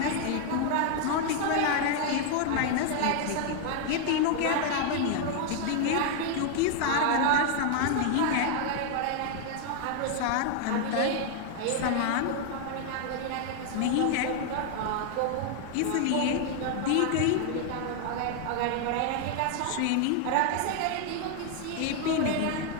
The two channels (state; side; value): different; both; correlation 0.00